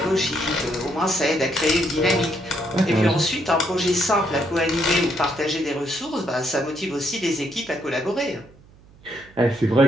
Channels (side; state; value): right; noise; hum, 25 dB below the sound